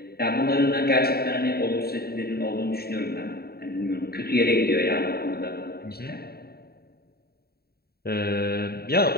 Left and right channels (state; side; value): late; right; 0.45 ms